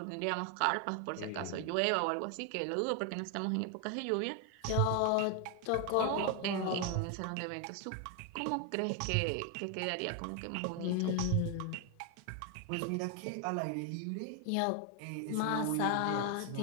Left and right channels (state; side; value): different; both; correlation 0.01